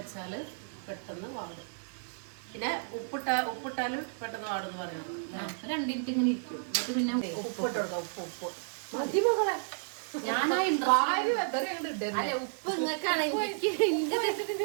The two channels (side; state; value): left; silent; 56 dB below the other